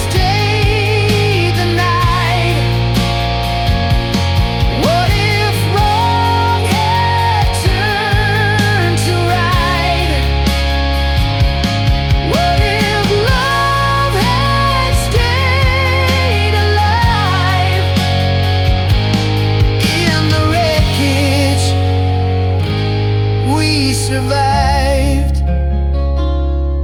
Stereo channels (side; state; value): both; identical; correlation 1.00